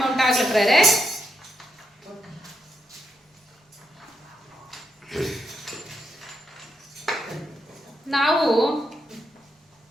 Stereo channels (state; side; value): normal; both; correlation 0.81